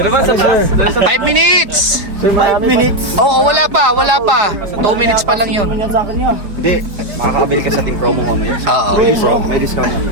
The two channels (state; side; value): late; left; 5.0 ms